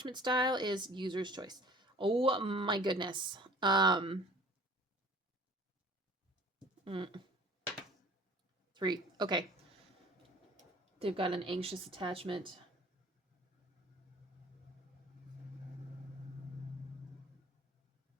style is user's choice. Oh my goodness. 3. Okay. They've got an anxious attachment.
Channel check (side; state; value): both; normal; correlation 0.49